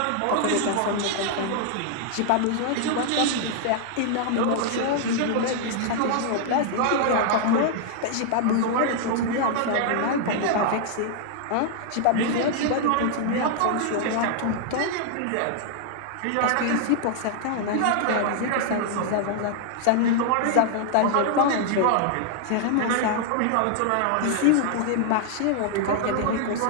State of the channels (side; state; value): both; different; correlation 0.00